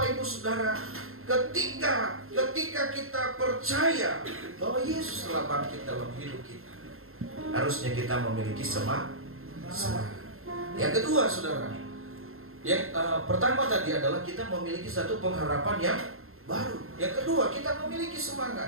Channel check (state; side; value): late; left; 0.61 ms